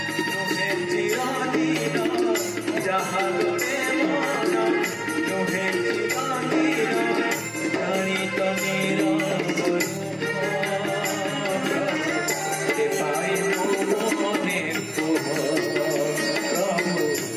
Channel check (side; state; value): both; identical; correlation 1.00